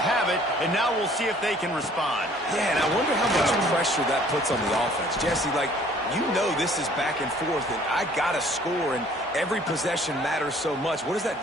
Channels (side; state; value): both; normal; correlation 0.56